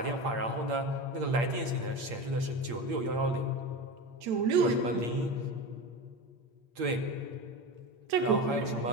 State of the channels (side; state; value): left; late; 8.7 ms